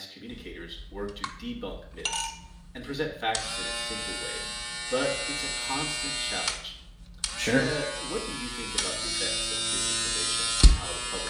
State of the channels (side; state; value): both; identical; correlation 1.00